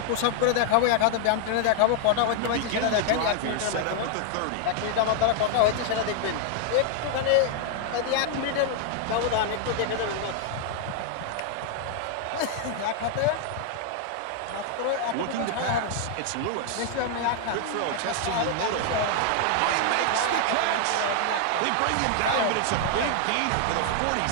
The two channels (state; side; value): different; both; correlation -0.01